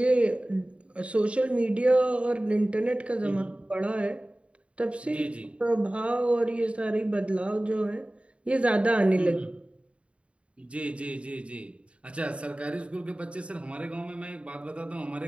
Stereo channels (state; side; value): late; left; 0.061 ms